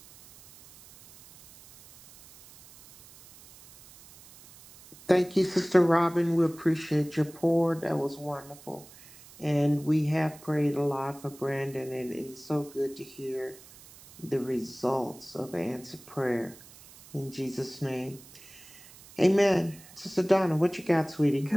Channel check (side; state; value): right; noise; hiss, 21 dB below the sound